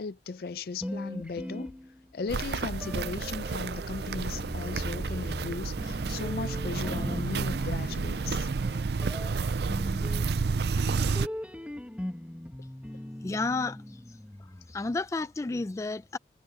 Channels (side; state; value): both; normal; correlation 0.65